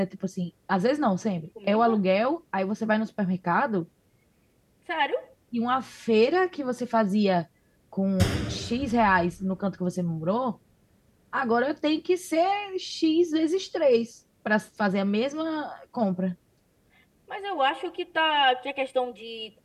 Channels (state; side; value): identical; both; correlation 1.00